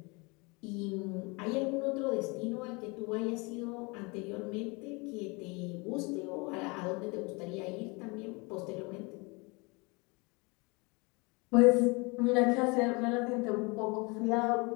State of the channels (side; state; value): right; quieter; 28.4 dB